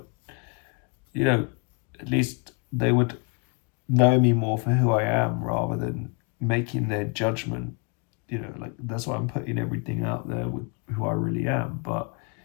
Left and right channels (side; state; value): right; quieter; 31.7 dB